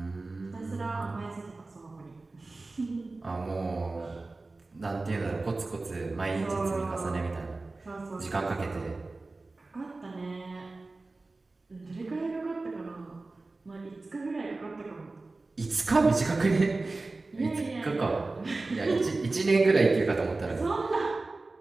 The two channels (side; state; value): left; quieter; 3.4 dB